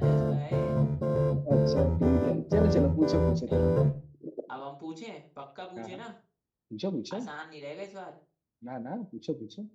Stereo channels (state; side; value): identical; both; correlation 1.00